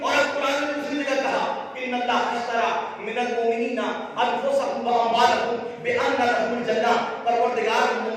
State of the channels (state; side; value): identical; both; correlation 1.00